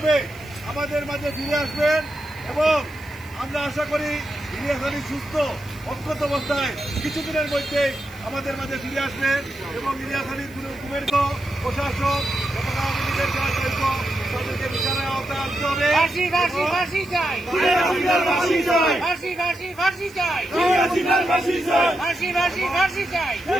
আমাদের মাঝে ফিরে আসবেন এবং আমরা আশা করি ইলিয়াস আলী সুস্থ অক্ষত অবস্থায় কিছুদিনের মধ্যে আমাদের মাঝে ফিরে আসবেন এবং ইলিয়াস আলীর গুমের প্রশাসক এবং আওয়ামী লীগের যারা জড়িত তাদেরকে বিচারের আওতায় আনতে হবে।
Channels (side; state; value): right; noise; hiss, 25 dB below the sound